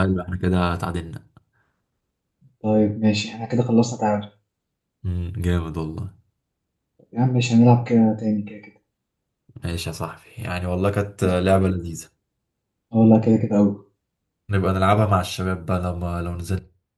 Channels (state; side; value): identical; both; correlation 1.00